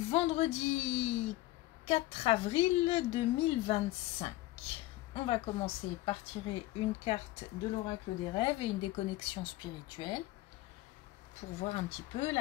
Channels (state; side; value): quieter; right; 17.7 dB